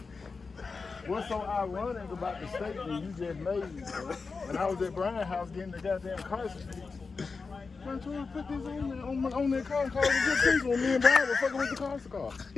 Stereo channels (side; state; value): right; quieter; 4.6 dB